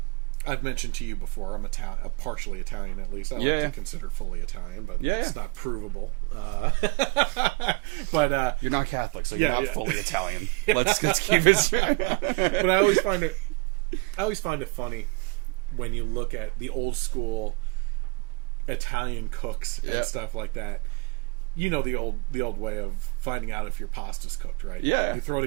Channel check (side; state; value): left; quieter; 26.3 dB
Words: I've mentioned to you before, I'm partially Italian at least. I like to consider fully Italian, but it's not provable. But you're not Catholic, so you're not fully Italian. Let's keep it straight. But I always find it funny when you look at the old school Italian cooks and stuff like that. You know the old way of finding out if your pasta's cooked, right? Yeah. You throw it